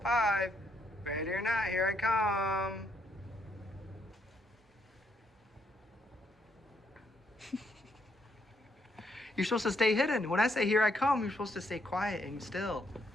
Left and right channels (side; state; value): both; normal; correlation 0.74